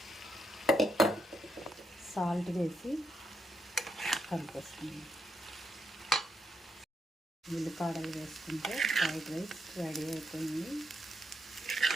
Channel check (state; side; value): normal; both; correlation 0.80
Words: సాల్ట్ వేసి కలిపేస్తున్నాం. ఉల్లిపాయలు వేసుకుంటే ఫ్రైడ్ రైస్ రెడీ అయిపోయింది.